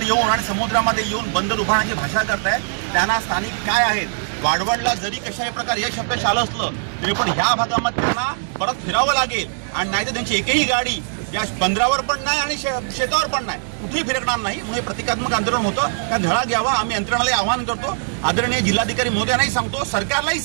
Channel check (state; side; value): silent; left; digital silence